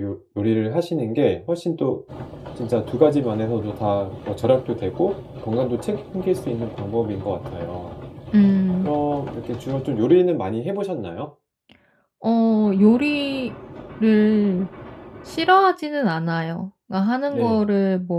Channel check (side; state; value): both; identical; correlation 1.00